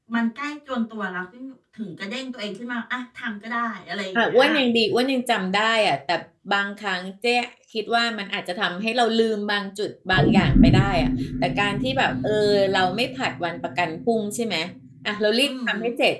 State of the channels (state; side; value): identical; both; correlation 1.00